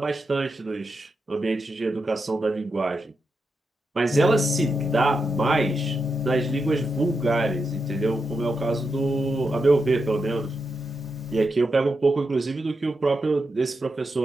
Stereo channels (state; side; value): normal; both; correlation 0.86